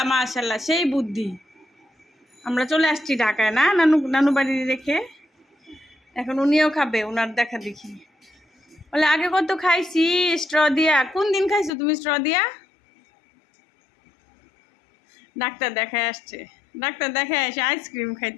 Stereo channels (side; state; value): right; drops out; at 11.7 s